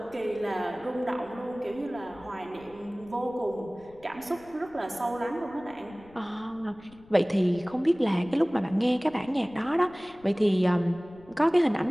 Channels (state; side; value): noise; left; rumble, 26 dB below the sound